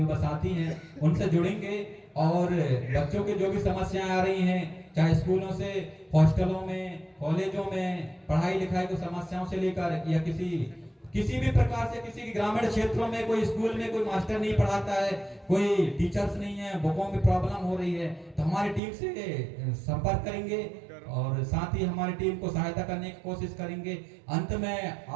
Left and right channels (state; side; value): drops out; left; at 18.8 s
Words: साथी हैं उनसे जुड़ेंगे, और बच्चों की जो भी समस्याएं आ रही हैं, चाहे स्कूलों से, हॉस्टलों में, कॉलेजों में पढ़ाई लिखाई को समस्याओं से लेकर, या किसी भी प्रकार से किसी के ग्रामीण क्षेत्रों में कोई स्कूल में कोई मास्टर नहीं पढ़ाता है, कोई टीचर्स नहीं है, बुकों में प्रॉब्लम हो रही है, तो हमारी टीम से संपर्क करेंगे और साथ ही हमारी टीम को सहायता करने की कोशिश करेंगे। अंत में